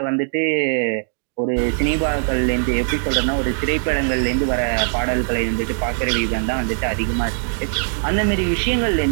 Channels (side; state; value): left; silent; digital silence